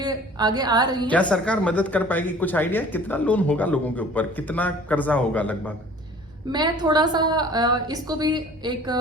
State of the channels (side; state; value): both; normal; correlation 0.48